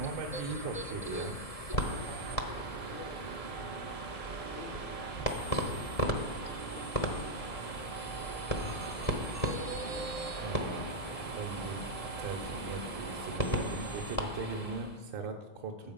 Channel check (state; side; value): late; right; 1.7 ms